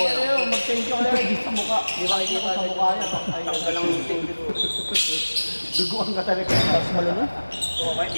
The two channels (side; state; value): both; inverted; correlation -1.00